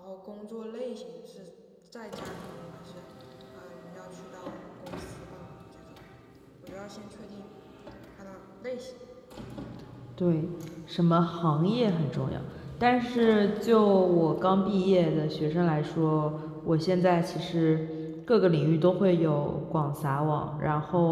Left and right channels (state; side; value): identical; both; correlation 1.00